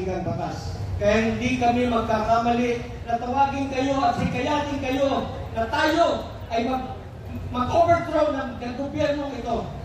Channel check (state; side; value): identical; both; correlation 1.00